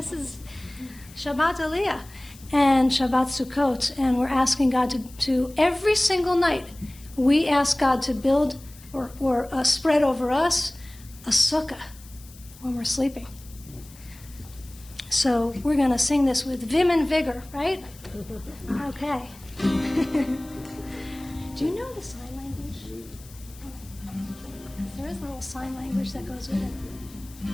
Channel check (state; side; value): noise; left; hiss, 22 dB below the sound